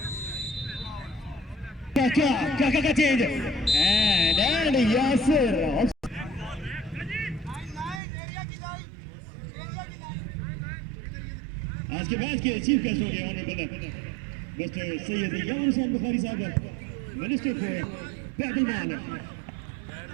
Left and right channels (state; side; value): drops out; left; at 8.0 s